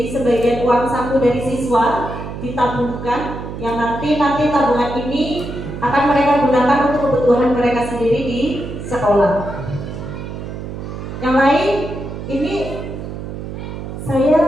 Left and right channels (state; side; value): noise; right; hum, 8 dB below the sound